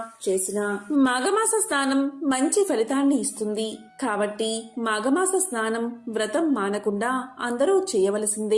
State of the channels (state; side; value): identical; both; correlation 1.00